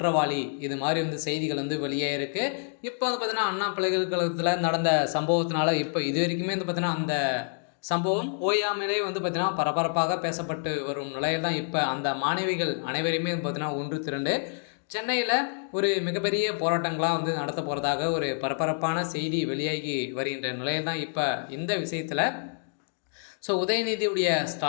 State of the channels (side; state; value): right; silent; digital silence